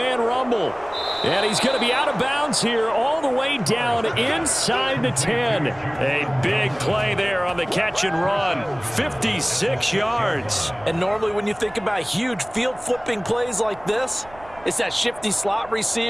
rumble. And he's going to be out of bounds here all the way down inside the 10. A big play there on the catch and run. 56 yards. And normally when you think about huge field flipping plays like this, it's that shifty slot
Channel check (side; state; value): right; noise; rumble, 22 dB below the sound